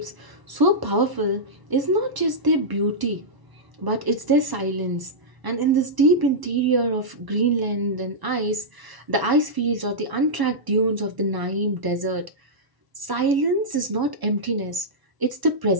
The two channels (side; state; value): left; late; 1.0 ms